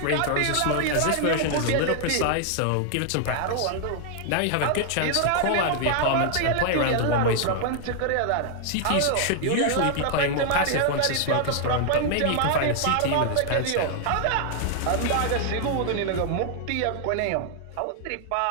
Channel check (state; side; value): different; both; correlation 0.00